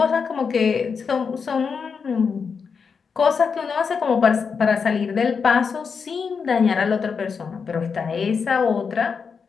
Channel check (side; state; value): right; quieter; 5.8 dB